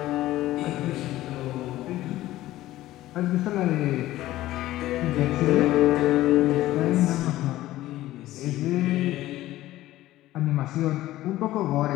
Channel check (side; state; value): right; quieter; 15.5 dB